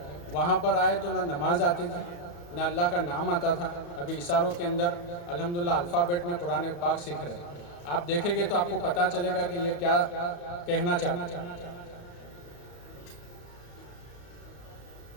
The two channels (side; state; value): right; late; 34 ms